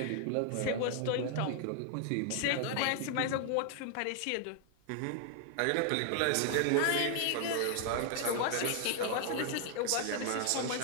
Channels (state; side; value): different; both; correlation 0.00